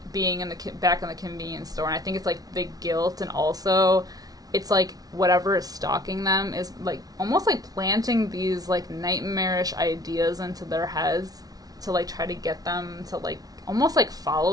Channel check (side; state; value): left; late; 0.18 ms